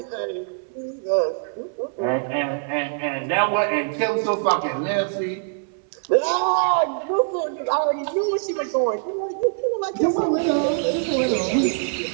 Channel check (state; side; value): silent; left; 63 dB below the other